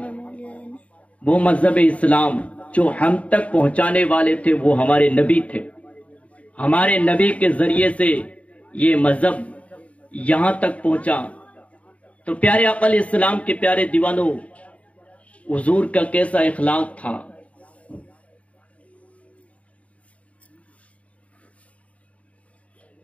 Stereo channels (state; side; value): late; right; 0.066 ms